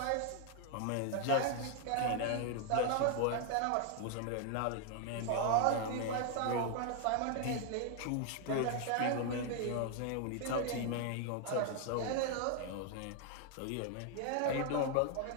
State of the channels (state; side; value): different; both; correlation 0.00